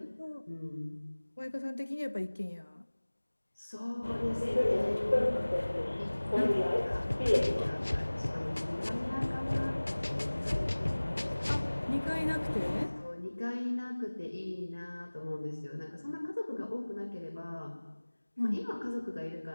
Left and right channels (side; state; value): both; inverted; correlation -1.00